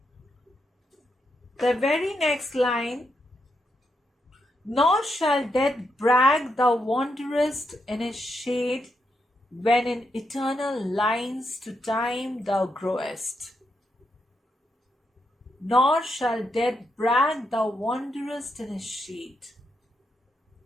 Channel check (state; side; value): normal; both; correlation 0.82